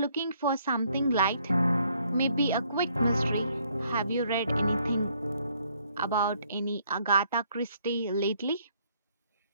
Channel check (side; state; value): both; inverted; correlation -0.67